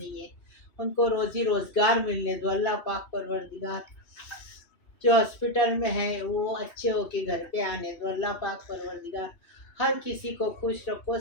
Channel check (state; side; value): late; right; 2.8 ms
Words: है उनको रोजी रोजगार मिलने दो। अल्लाह पाक परवरदिगार जो हॉस्पिटल में है वो अच्छे होके घर पे आने दो। अल्लाह पाक परवरदिगार हर किसी को खुश रखो,